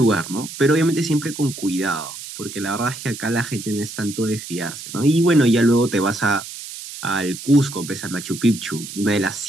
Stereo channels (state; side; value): noise; right; hiss, 11 dB below the sound